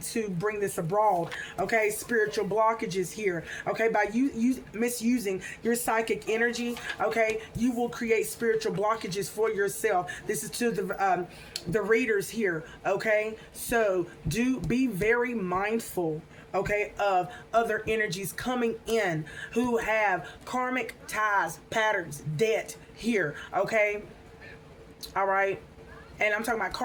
bring this abroad, okay? Spiritual blockages here, okay? By you misusing your psychic energy, okay, you will create spiritual blockages for yourself. This is to the readers here, okay? So be very mindful, okay, of other energies coming in who have karmic ties, patterns, debt here, okay? All right? And I'm talking about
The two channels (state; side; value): identical; both; correlation 1.00